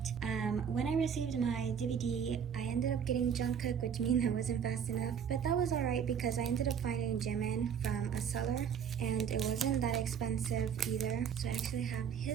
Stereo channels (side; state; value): left; quieter; 7.7 dB